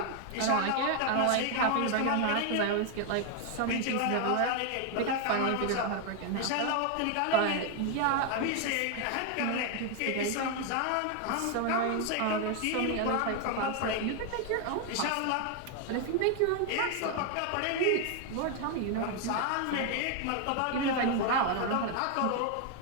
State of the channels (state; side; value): different; both; correlation 0.01